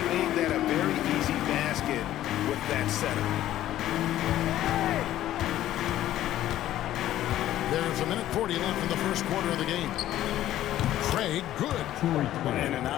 made that a very easy basket with that setup. There's a minute 40 left in the first quarter of the game. Craig, good. And an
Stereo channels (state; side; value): quieter; right; 13.2 dB